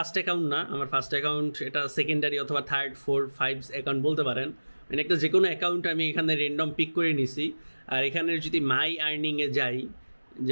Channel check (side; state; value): both; inverted; correlation -1.00